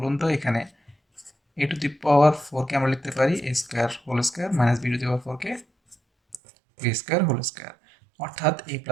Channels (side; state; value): left; drops out; at 6.4 s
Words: তো? এখানে এ টু দি পাওয়ার 4 কে আমরা লিখতে পারি a square whole square minus b to the power 4 কে বি স্কোয়ার হোল স্কোয়ার, অর্থাৎ a